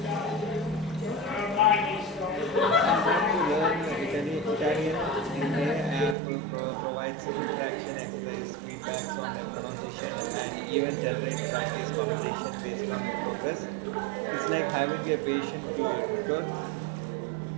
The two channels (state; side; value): drops out; left; at 6.2 s